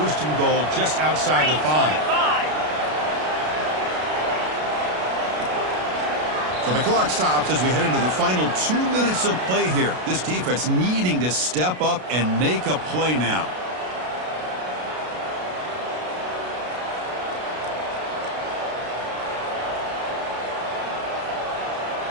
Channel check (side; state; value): left; late; 33 ms